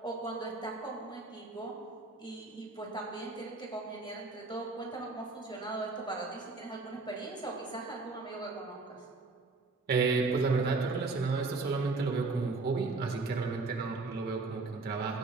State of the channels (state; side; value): quieter; left; 3.7 dB